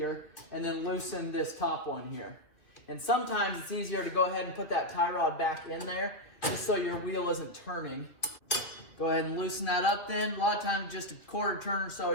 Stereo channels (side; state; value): right; late; 2.6 ms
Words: and then loosen this top one here. And sometimes it's easier to go ahead and put that tie rod back in there, just so your wheel isn't turning. Go ahead and loosen that up then. A lot of times just a quarter turn or so